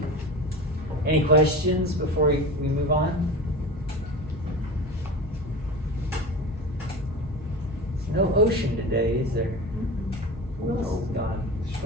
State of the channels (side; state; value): both; normal; correlation 0.30